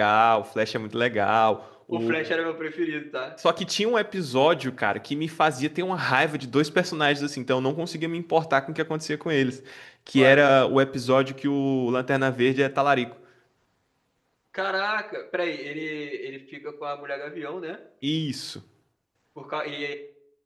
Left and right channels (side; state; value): both; identical; correlation 1.00